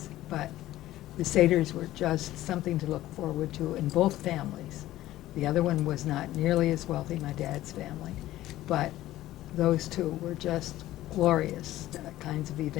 But the Seders were just something to look forward to in both families. The other one was not nearly as wealthy, my dad's family, but those two were just glorious kinds of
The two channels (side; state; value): right; quieter; 15.0 dB